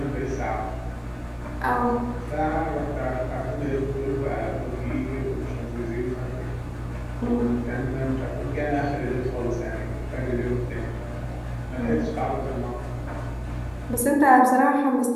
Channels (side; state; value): both; identical; correlation 1.00